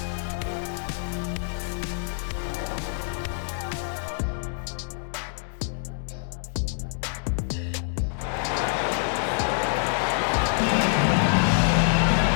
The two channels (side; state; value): right; silent; digital silence